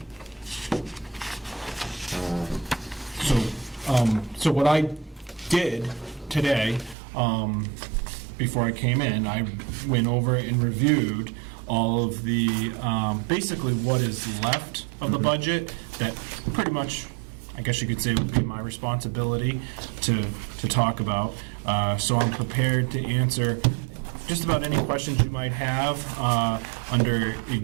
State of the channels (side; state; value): left; drops out; at 7.0 s